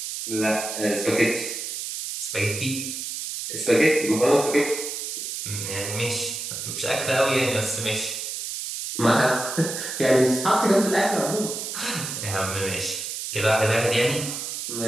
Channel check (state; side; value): noise; right; hiss, 5 dB below the sound